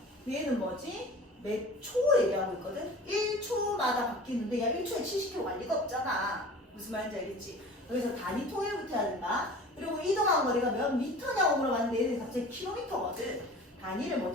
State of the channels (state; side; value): normal; both; correlation 0.41